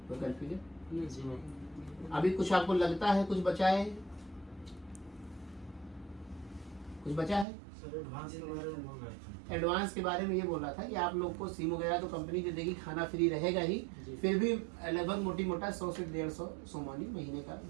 कोई कन्फ्यूजन? अभी कुछ आपको लगता है कुछ बचा है? कुछ बचा है? एडवांस के बारे में ये बोल रहा था कि आप लोग को सिम वगैरह तो कंपनी दे देगी, खाना फ्री रहेगा ही, फिर भी लगभग मोटी मोटा 100 से 150 सोमानी महीने का,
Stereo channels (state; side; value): drops out; left; at 7.5 s